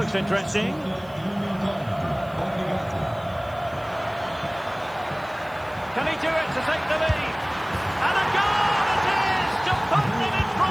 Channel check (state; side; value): noise; right; hiss, 27 dB below the sound